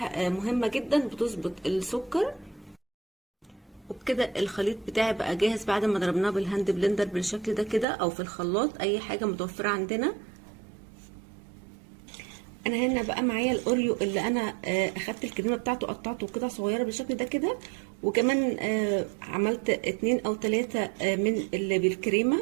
مهمه جدا بتظبط السكر. وبكده الخليط بتاعي بقى جاهز بعد ما ضربناه بالهاند بلندر بالشكل ده كده، او في الخلاط اي حاجه متوفره عندنا. انا هنا بقى معايا الاوريو اللي انا اخدت الكريمه بتاعته قطعته قطع صغيره بالشكل ده كده، وكمان عملت 2 أو 3 من اللي بالكريمه.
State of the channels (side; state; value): left; drops out; at 7.9 s